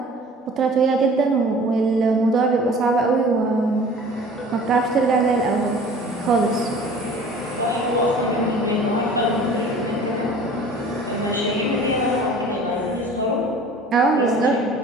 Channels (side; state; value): both; normal; correlation 0.45